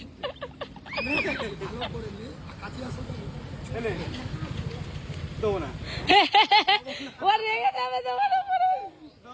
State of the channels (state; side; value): identical; both; correlation 1.00